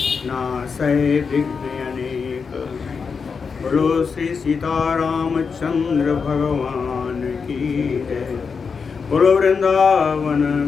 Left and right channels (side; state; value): right; quieter; 5.5 dB